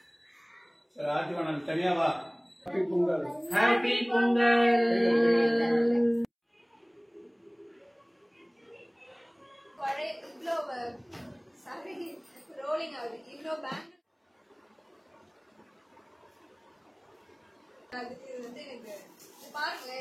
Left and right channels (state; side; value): identical; both; correlation 1.00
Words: சரி ஆதிவா நான் தனியா வா. ஹாப்பி பொங்கல். ஹாப்பி பொங்கல். ஒரே இவ்ளோ சாரி ரோலிங் ஆகுது. இவ்ளோ பேங்க் அதுக்கு வந்து எனக்கு பாருங்க